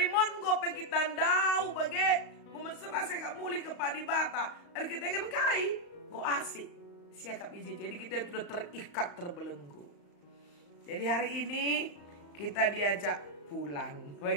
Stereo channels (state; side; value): late; right; 35 ms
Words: mongo pe kita ndau bagai memesera saya gak muli ke padibata. Ada kita kan kai, go asik. Siakap iji. Jadi kita sudah terikat terbelenggu. Jadi hari ini kita diajak pulang,